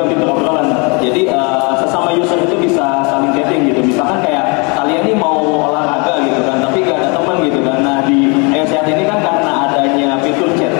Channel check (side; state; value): right; quieter; 31.5 dB